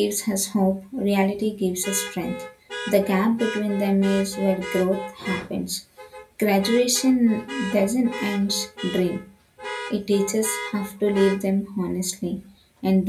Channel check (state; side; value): identical; both; correlation 1.00